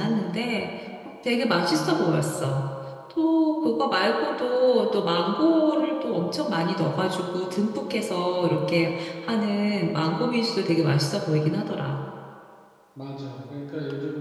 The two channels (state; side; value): identical; both; correlation 1.00